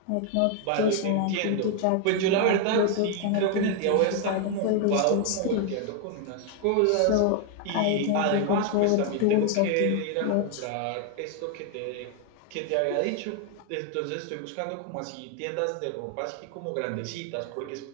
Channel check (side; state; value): both; different; correlation 0.00